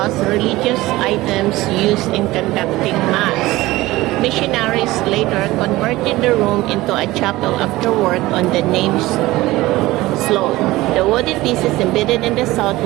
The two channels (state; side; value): quieter; left; 18.4 dB